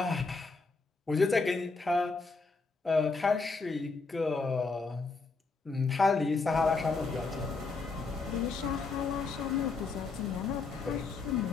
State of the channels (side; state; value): right; quieter; 4.1 dB